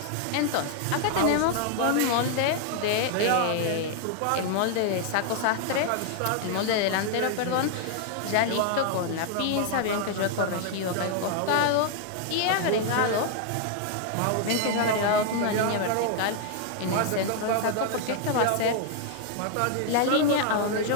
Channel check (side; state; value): both; different; correlation 0.00